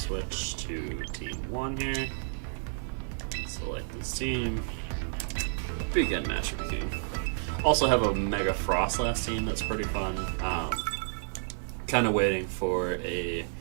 to Team 1 here. Select this team. Begin Master King. Also have a Mega Frostlass team that's pretty fun. Kind of waiting for a...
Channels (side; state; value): left; silent; digital silence